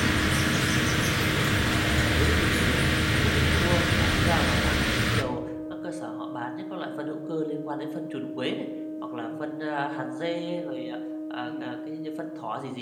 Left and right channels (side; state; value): both; identical; correlation 1.00